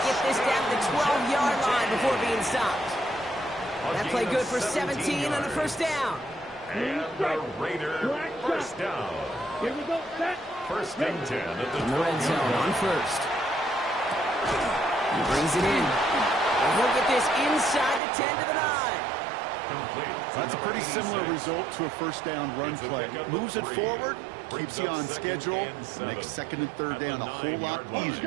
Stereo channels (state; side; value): drops out; left; at 18.0 s